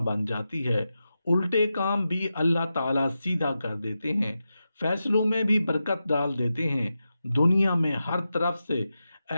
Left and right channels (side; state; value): both; inverted; correlation -0.91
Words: जाती है। उल्टे काम भी अल्लाह ताला सीधा कर देते हैं, फैसलों में भी बरकत डाल देते हैं। दुनिया में हर तरफ से